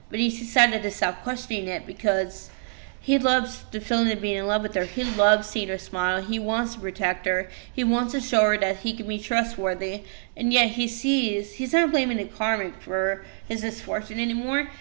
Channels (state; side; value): silent; left; 61 dB below the other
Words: But he's decided to stop questioning it because he loves the feeling of being in love with her. He loves seeing her smile. He wants to protect her. He wants to show her that he can be trustworthy. And yet he's not blaming the karmic for his misfortune anymore.